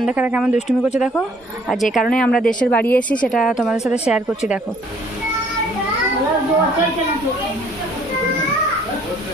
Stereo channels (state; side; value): normal; both; correlation 0.60